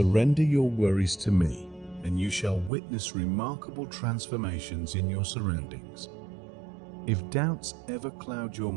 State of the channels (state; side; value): drops out; left; at 2.7 s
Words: your worries to me, and you shall witness remarkable transformations in your surroundings. If doubts ever cloud your